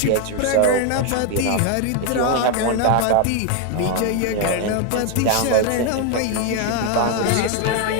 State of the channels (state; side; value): different; both; correlation 0.01